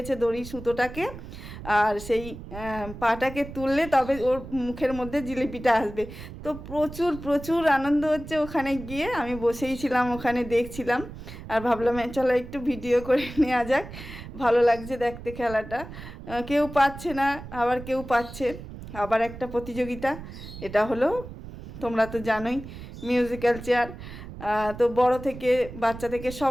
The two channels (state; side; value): noise; right; rumble, 12 dB below the sound